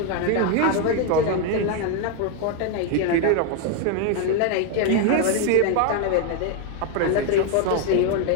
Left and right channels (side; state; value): both; different; correlation 0.01